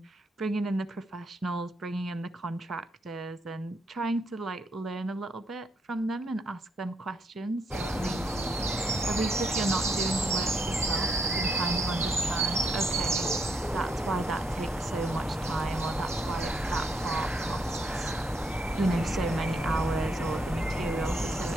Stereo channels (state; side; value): normal; both; correlation 0.74